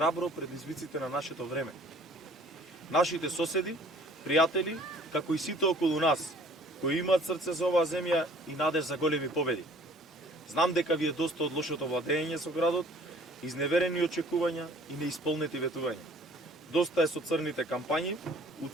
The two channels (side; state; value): both; normal; correlation 0.53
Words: предизвиците на нашето време. Нашите соседи, пријатели, како и сите околу нас, кои имаат срце за оваа земја и надеж за големи победи. Знам дека ви е доста од лошото владење со градот, изневерени очекувања и неисполнети ветувања. Доста е со црните кампањи,